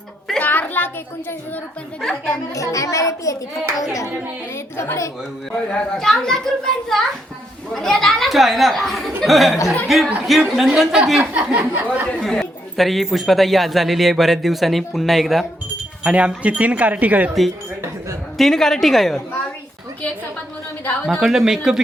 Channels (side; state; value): both; normal; correlation 0.77